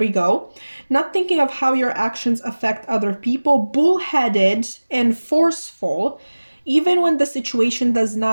go. Not thinking of how your actions affect other people. Bullheaded and forceful, even when the situation does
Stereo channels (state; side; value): inverted; both; correlation -1.00